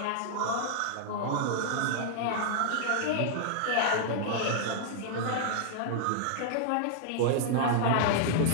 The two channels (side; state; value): both; different; correlation -0.01